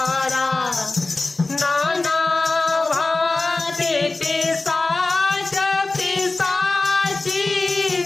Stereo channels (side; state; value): right; quieter; 3.4 dB